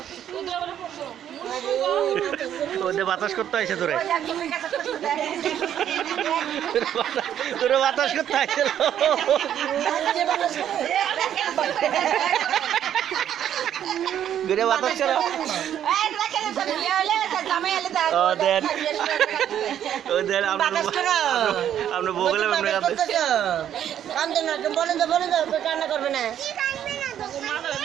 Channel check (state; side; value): quieter; left; 10.2 dB